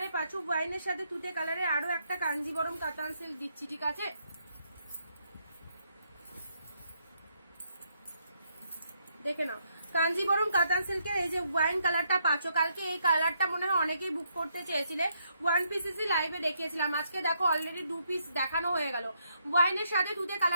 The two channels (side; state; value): both; inverted; correlation -0.75